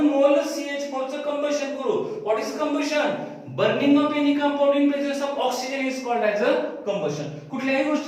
मोल CH4 चं कंबशन करू. What is combustion, burning of any compound in presence of oxygen is called as a combustion. कुठल्याही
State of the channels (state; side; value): identical; both; correlation 1.00